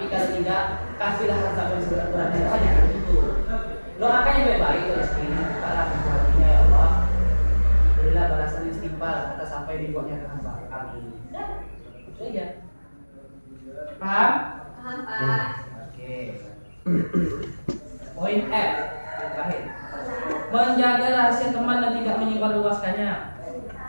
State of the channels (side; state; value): both; inverted; correlation -1.00